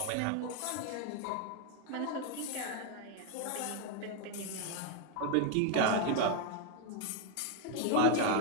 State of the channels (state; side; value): different; both; correlation 0.01